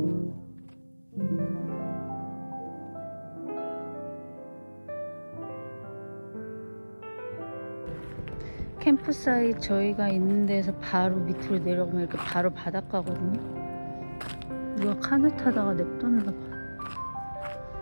캠프사이트 저희가 있는 데서 바로 밑으로 내려가면 이렇게 바로 바닷가거든요. 누가 카누 타다가 냅뒀나 봐.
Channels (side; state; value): both; inverted; correlation -1.00